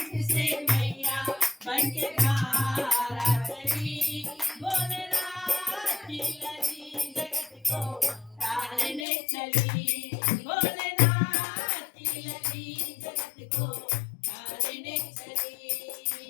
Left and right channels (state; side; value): drops out; right; at 9.1 s